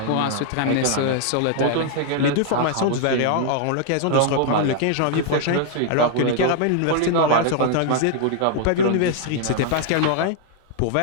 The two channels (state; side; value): different; both; correlation 0.00